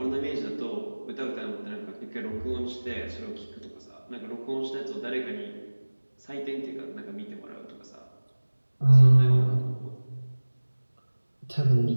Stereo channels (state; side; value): inverted; both; correlation -1.00